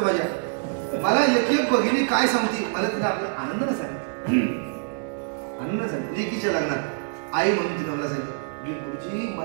माझ्या मला एक भगिनी काय सांगते, मला तिला आपल्या आनंदानं सांगितलं, आनंदानं सांगितलं. लेकीच्या लग्नात आई म्हणून तिने मला सांगितलं, गुरुजी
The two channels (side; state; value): left; silent; digital silence